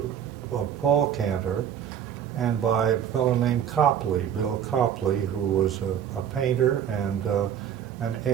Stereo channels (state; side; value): quieter; left; 9.1 dB